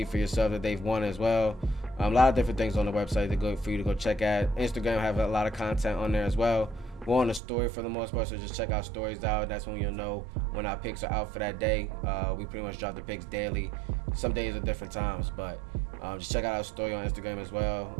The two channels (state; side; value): drops out; left; at 7.4 s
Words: for yourself that they've won as well. A lot of different things on the website for you to go check out. Instagram have a lot of content on there as well. We're on the story for the most part, so just check our stories out. That's when you'll know when our picks are out for that day. We pretty much drop the picks daily. Some days at different times, but just check out our story on Instagram as